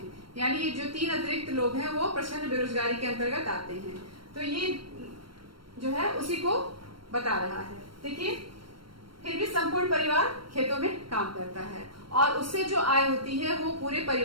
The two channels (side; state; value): left; late; 0.73 ms